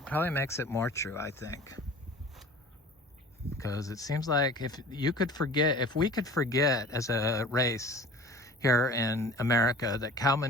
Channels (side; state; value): both; normal; correlation 0.43